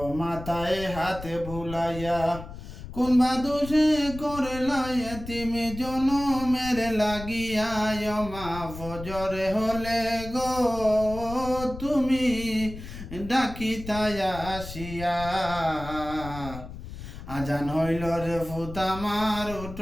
মাথায় হাত বুলাইয়া কোন বাদুষে করলা এতিম জনমের লাগিয়া মা ফজরে হলে গো তুমি ডাকিতাই আসিয়া আজান হইল রে ফুত আমার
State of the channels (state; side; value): noise; left; rumble, 12 dB below the sound